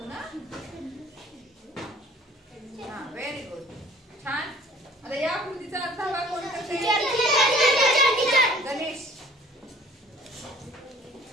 हा व्हेरी गुड. छान. आता या आकृतीचा अर्धा भाग कोण करते? गणेश.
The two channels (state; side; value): normal; both; correlation 0.50